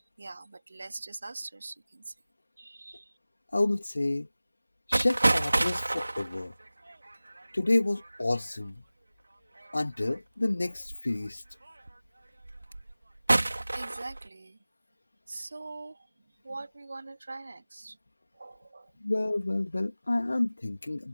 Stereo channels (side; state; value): both; inverted; correlation -0.98